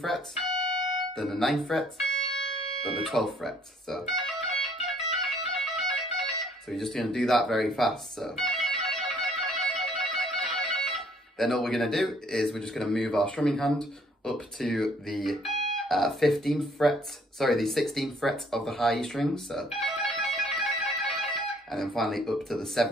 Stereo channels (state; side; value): normal; both; correlation 0.62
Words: fret, then the 9th fret, then the 12th fret, so you're just going to do that very fast, so. Then all we're going to do is we're just going to move our strumming hand up to the 16th fret of the high E string, so, and then finally up to the